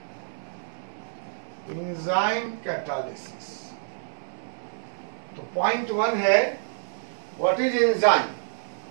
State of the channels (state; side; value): silent; left; 58 dB below the other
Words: Enzyme catalysis. तो पॉइंट 1 है व्हाट इज एंजाइम।